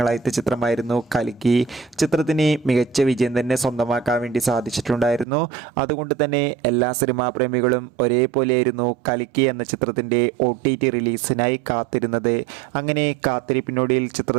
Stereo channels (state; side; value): drops out; left; at 5.2 s